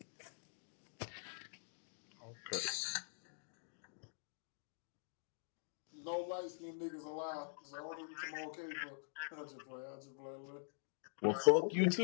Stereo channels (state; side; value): silent; right; digital silence